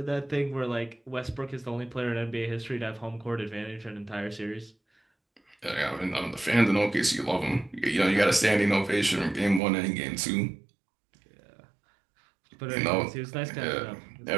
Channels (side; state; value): left; drops out; at 9.6 s